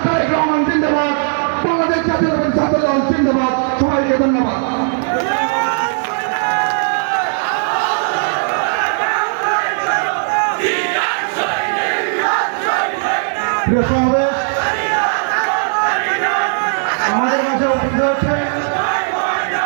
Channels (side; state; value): left; silent; digital silence